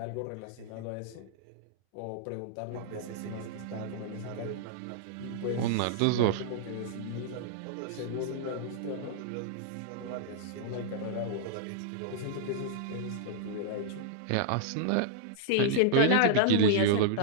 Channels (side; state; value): both; different; correlation -0.02